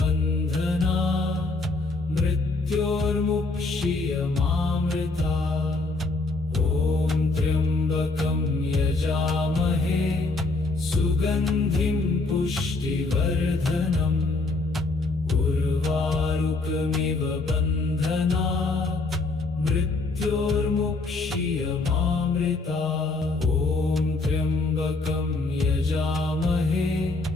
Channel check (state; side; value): quieter; right; 3.4 dB